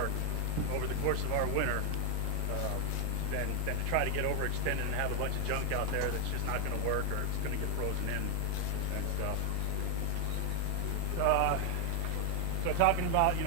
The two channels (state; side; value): different; both; correlation 0.00